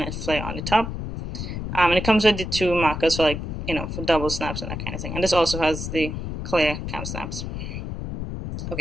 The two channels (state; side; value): noise; left; rumble, 6 dB below the sound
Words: flare on the top. And it comes with the 2 markers for for double snaps and that kind of thing. And this also has the clear cam snaps.